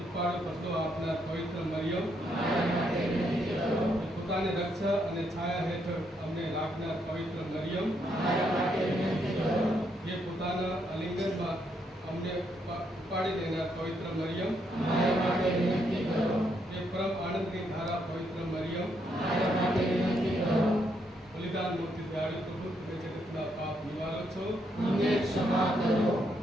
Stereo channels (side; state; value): both; normal; correlation 0.76